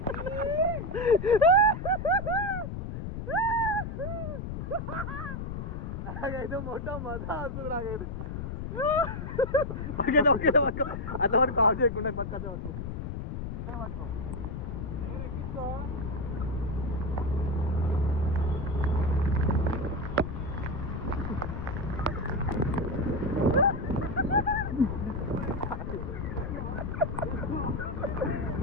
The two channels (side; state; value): left; noise; rumble, 5 dB below the sound